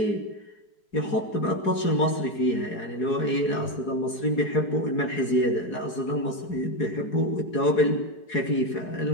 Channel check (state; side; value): late; right; 4.7 ms